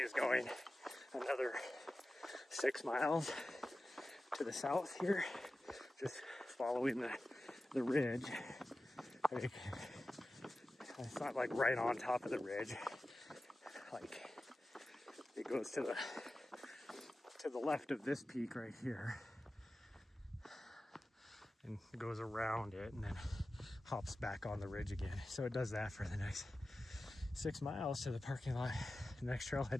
going another 6 miles to the south here, just following the ridge. I mean, it's not like right on top of the ridge, like it goes to the left of this peak right here and goes around it and then hops back on the ridge again. So it does that for the next 6 miles to the parking lot, the next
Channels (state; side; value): normal; both; correlation 0.94